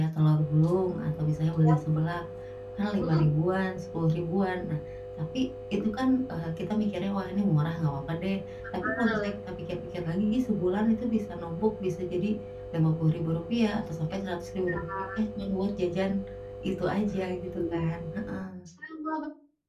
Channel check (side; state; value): both; identical; correlation 1.00